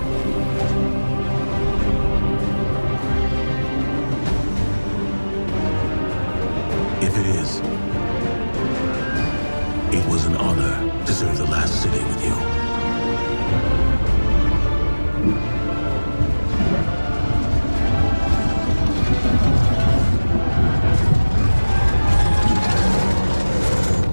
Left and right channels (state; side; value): inverted; both; correlation -1.00